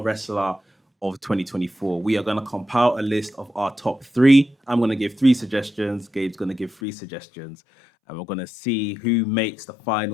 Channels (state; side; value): drops out; right; at 6.8 s